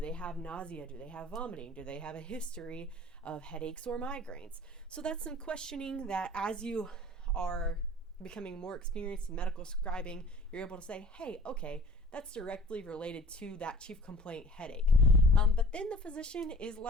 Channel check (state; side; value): normal; both; correlation 0.46